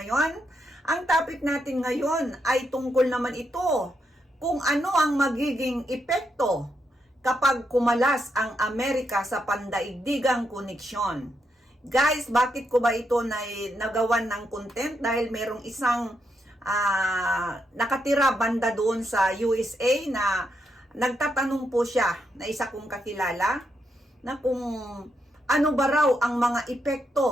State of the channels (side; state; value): both; normal; correlation 0.81